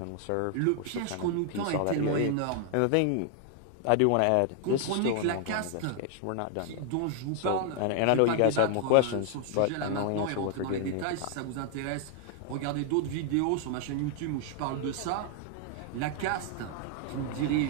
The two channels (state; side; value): different; both; correlation 0.00